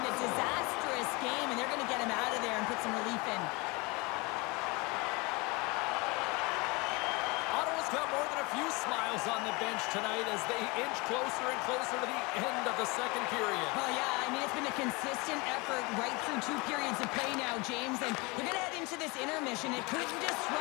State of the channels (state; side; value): quieter; right; 26.6 dB